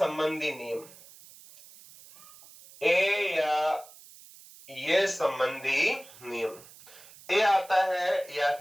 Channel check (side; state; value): right; noise; hiss, 21 dB below the sound